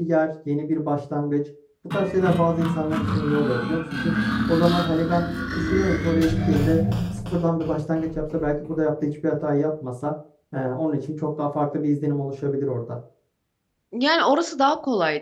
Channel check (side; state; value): both; identical; correlation 1.00